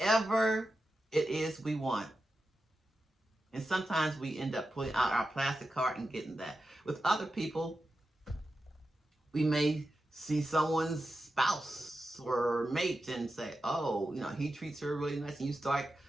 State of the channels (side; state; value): both; normal; correlation 0.91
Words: it is we want. And sometimes we end up pulling out our plastic card and getting that. With other people, we may see someone's spouse or mate and say, oh, he treats her really nice, and you start